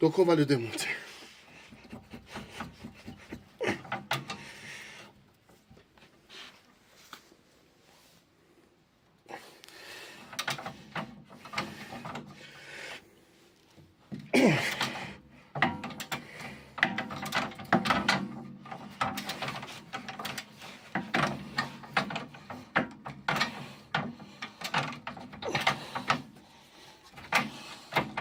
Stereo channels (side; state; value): both; identical; correlation 1.00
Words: on va le démonter.